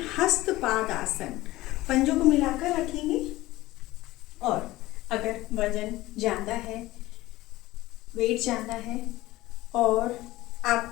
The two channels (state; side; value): quieter; right; 17.8 dB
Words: हस्तपाद आसन। पंजों को मिलाकर रखेंगे और अगर वजन ज़्यादा है, वेट ज़्यादा है और